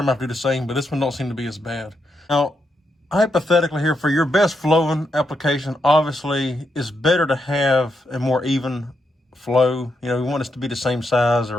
going to have to do the same, but this one don't seem to be as bad. Now, hypothetically here, for your best flowing application, obviously it's better to have a more even flow. You know, you want this to be the same size,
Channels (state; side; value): normal; both; correlation 0.82